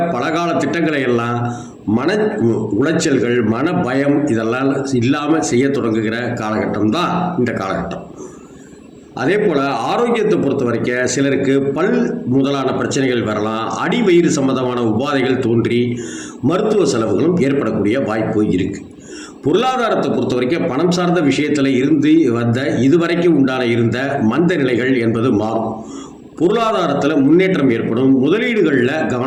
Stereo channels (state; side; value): identical; both; correlation 1.00